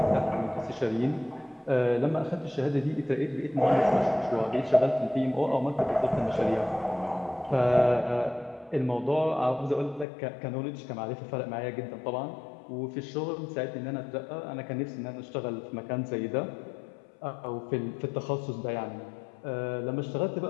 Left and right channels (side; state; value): right; drops out; at 10.1 s